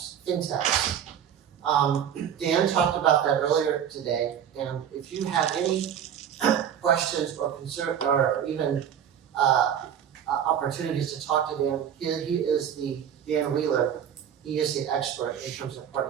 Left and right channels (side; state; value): left; quieter; 9.0 dB